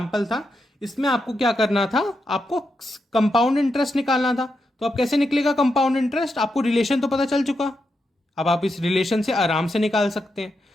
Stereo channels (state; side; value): normal; both; correlation 0.85